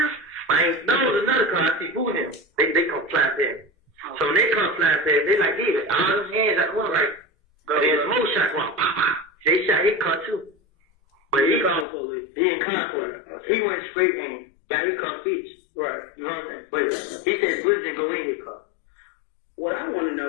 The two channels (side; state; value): right; drops out; at 11.9 s